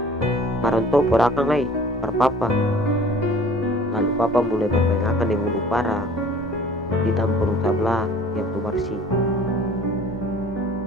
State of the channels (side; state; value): both; normal; correlation 0.48